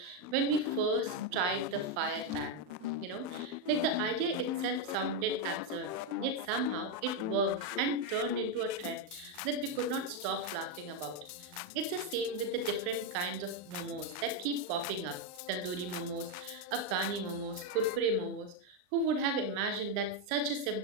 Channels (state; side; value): late; left; 39 ms